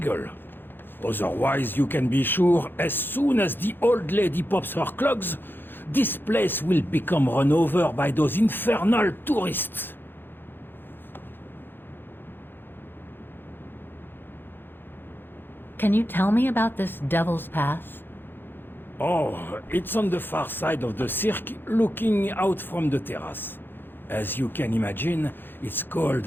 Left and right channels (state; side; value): late; right; 0.099 ms